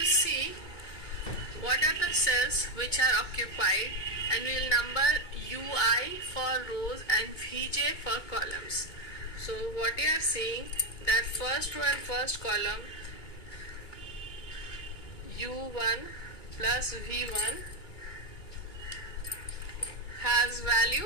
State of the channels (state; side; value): late; right; 2.2 ms